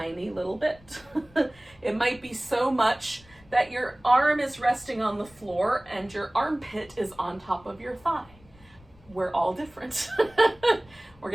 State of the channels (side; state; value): left; noise; rumble, 26 dB below the sound